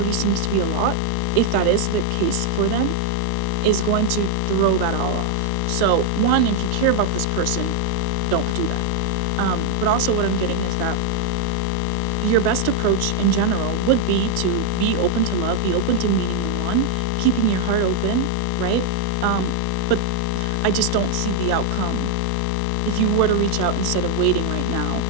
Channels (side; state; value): both; different; correlation 0.00